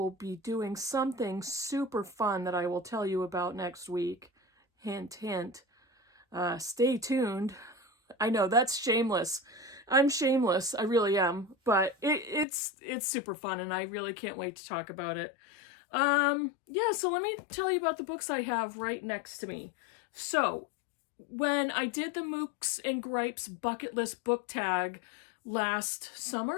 be doing something super fun that I will tell you about next week. Hint, hint. Stay tuned. I know, that's shameless. I'm shameless, I really am, but it's super fun, and I really can't wait to talk about it. Yeah, so let me tell you about the books I have right next to me. So, when I did the Mookse and Gripes bucket list book tag last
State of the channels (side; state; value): right; drops out; at 12.5 s